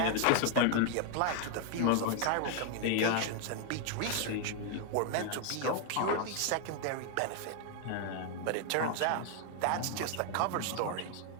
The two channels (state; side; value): different; both; correlation 0.00